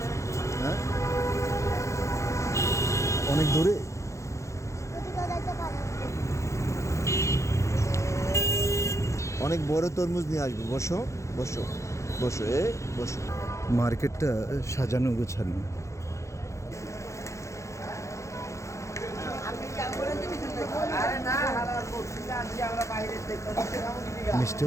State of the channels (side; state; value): right; late; 0.14 ms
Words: হ্যাঁ, অনেক দূরে। অনেক বড় তরমুজ নিয়ে আসবো। বসো বসো বসো, বসো। মার্কেটটা সাজানো গোছানো। মিষ্টি